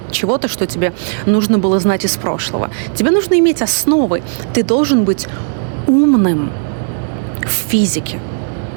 чего-то, что тебе нужно было знать из прошлого. Тебе нужно иметь основы. Ты должен быть умным в физике.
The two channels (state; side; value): silent; left; digital silence